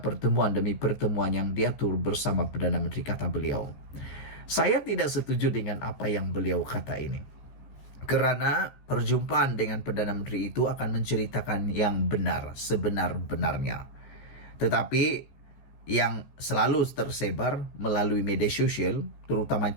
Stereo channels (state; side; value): late; right; 14 ms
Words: pertemuan demi pertemuan yang diatur bersama Perdana Menteri, kata beliau. Saya tidak setuju dengan apa yang beliau kata ini. Kerana perjumpaan dengan Perdana Menteri itu akan menceritakan yang benar, sebenar-benarnya. Tetapi yang selalu tersebar melalui media sosial, terutama